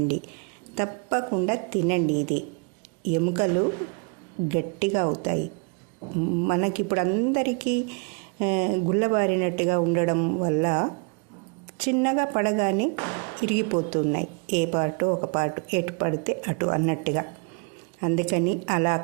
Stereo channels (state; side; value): quieter; left; 34.6 dB